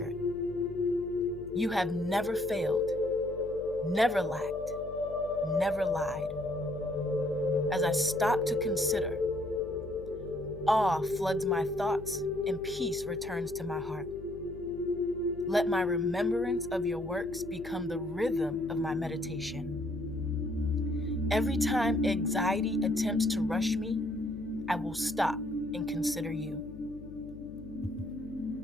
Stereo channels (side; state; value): left; noise; hum, 16 dB below the sound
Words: You have never failed, never lacked, never lied. As I stop to consider, awe floods my thoughts and peace returns to my heart. Let my remembrance of your works become the rhythm of my meditation. Every time anxiety attempts to rush me, I will stop and consider you.